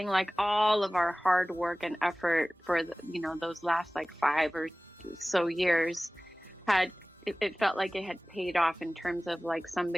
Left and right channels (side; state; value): both; normal; correlation 0.98